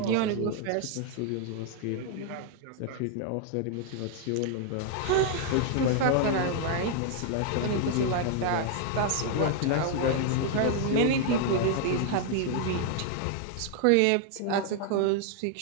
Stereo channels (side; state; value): both; different; correlation 0.00